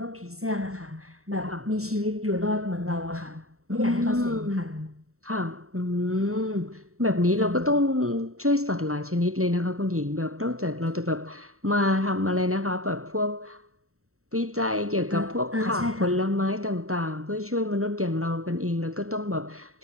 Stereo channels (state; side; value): late; left; 0.64 ms